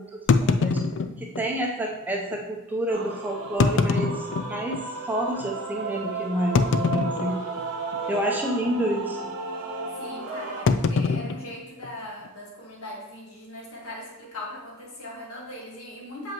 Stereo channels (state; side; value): normal; both; correlation 0.49